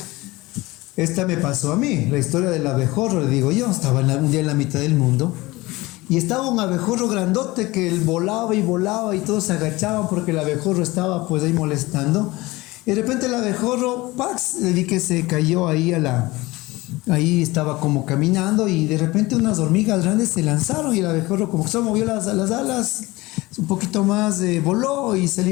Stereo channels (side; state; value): right; quieter; 20.9 dB